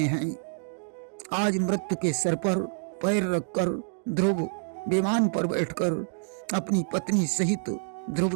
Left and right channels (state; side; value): silent; left; digital silence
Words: हैं। आज मृत्यु के सर पर पैर रखकर ध्रुव विमान पर बैठकर अपनी पत्नी सहित